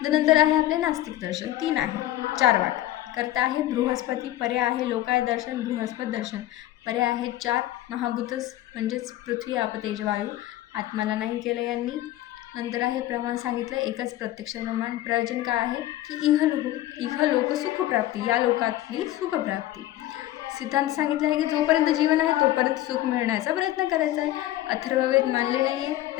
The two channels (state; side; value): quieter; right; 14.6 dB